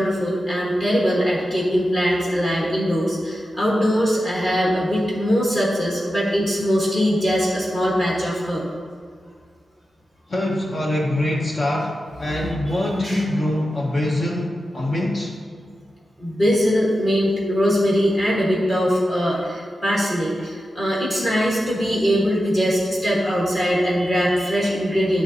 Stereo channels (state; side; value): normal; both; correlation 0.91